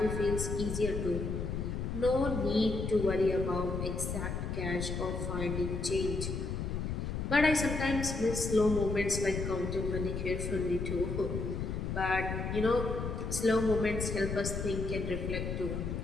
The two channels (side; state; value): left; noise; rumble, 3 dB below the sound